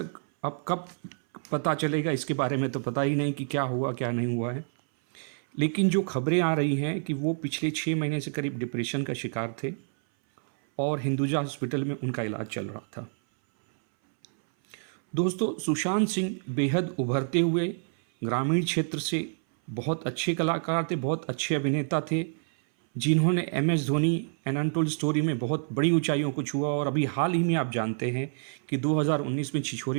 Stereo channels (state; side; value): silent; left; 59 dB below the other